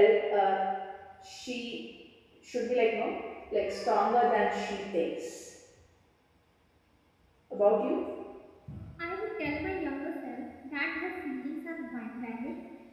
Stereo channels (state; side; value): identical; both; correlation 1.00